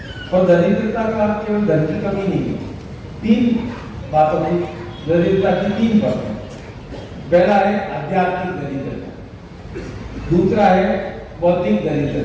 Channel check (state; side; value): identical; both; correlation 1.00